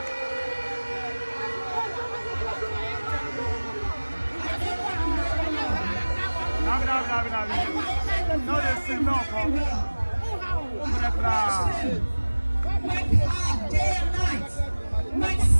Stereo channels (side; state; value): both; inverted; correlation -1.00